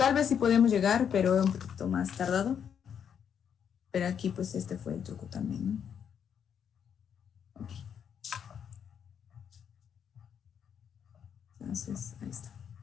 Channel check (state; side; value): quieter; right; 8.0 dB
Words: vez sí podemos llegar, pero un poquito más tardado. Pero aquí, pues, este fue el truco también, ¿no? Ok. Entonces, ahí está.